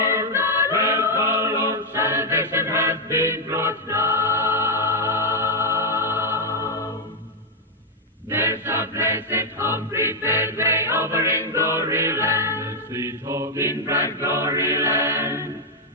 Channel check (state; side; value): normal; both; correlation -0.01